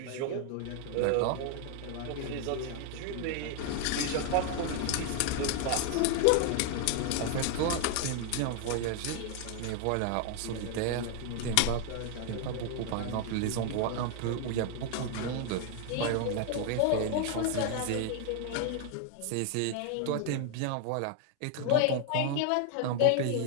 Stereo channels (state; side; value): different; both; correlation 0.00